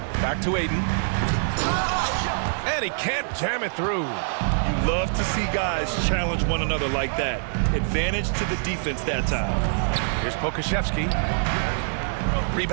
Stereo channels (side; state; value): left; silent; digital silence